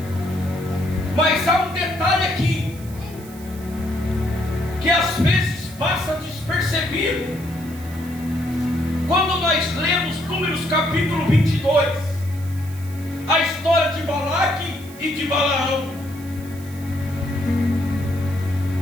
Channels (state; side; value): noise; right; hiss, 20 dB below the sound